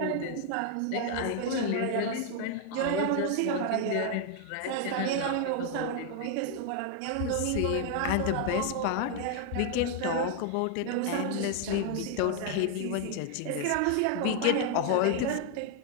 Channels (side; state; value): both; different; correlation 0.00